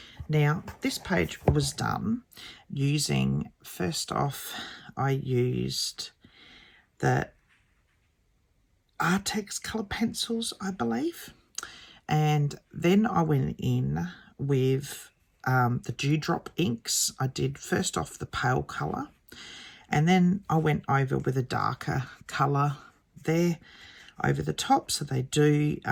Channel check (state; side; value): identical; both; correlation 1.00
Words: Now this page was done using, first off, I used the Artex colour pencils, I believe. And then I went in with the Dewdrop inks. I did first off the pale colour, and then I went over with a darker colour there over the top, so they do